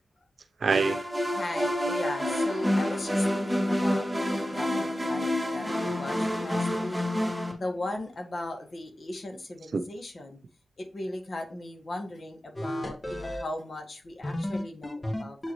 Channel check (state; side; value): normal; both; correlation 0.93